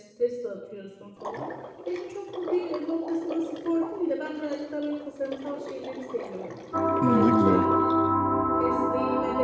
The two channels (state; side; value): identical; both; correlation 1.00